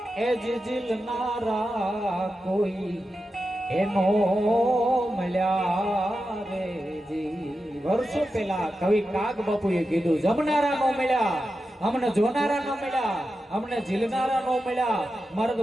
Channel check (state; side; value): normal; both; correlation 0.90